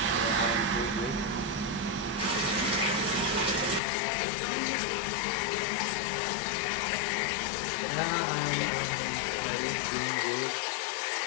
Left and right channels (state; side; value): drops out; right; at 3.8 s